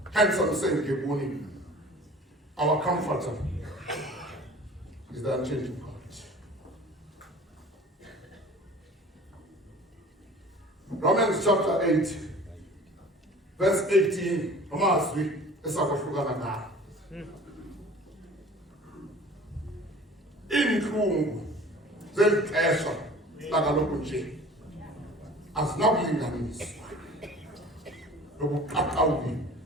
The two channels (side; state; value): both; normal; correlation 0.44